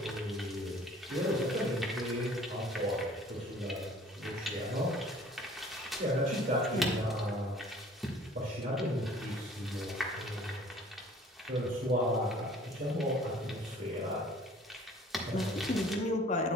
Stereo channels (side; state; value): both; normal; correlation 0.52